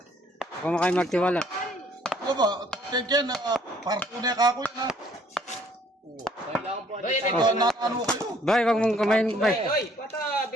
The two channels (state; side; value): normal; both; correlation 0.62